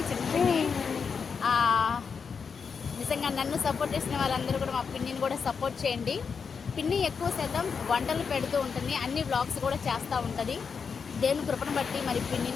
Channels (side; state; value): right; quieter; 5.9 dB